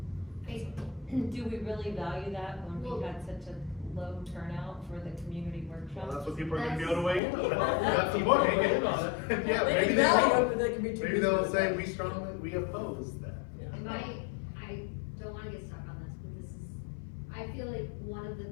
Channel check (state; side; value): drops out; right; at 7.2 s